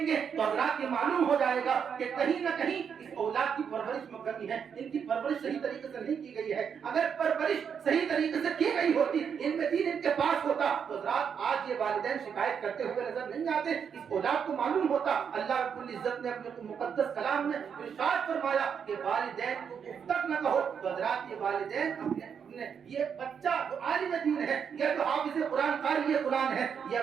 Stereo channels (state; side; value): quieter; left; 7.2 dB